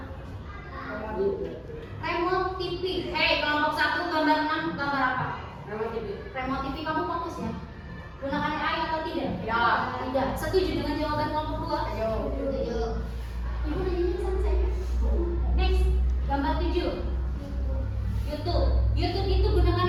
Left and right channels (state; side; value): identical; both; correlation 1.00